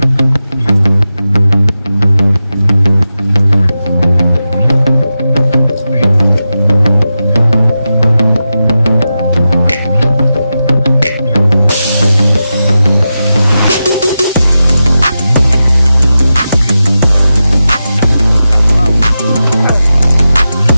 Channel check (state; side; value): inverted; both; correlation -0.91